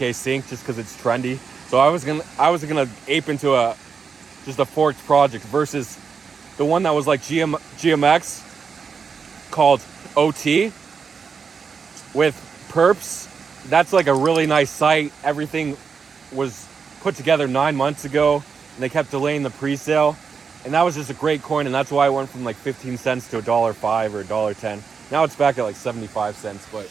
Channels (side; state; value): left; quieter; 5.8 dB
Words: Sync, just because it's trendy. So I was gonna ape into just a forked project versus the one that was like GMX called OT with perps. That's like a really nice site. Everything was put together 9 months ago, and they kept delaying the pre-sale. And that was just a great coin, and that's why it went from like 15 cents to $1.05 or $1.10. Now it's back at like 75 cents, but